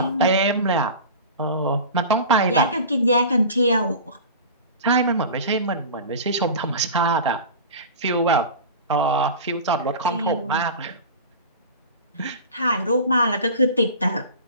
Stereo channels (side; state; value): both; inverted; correlation -0.34